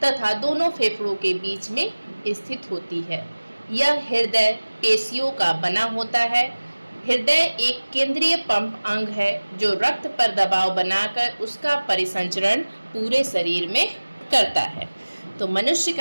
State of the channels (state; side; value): inverted; both; correlation -1.00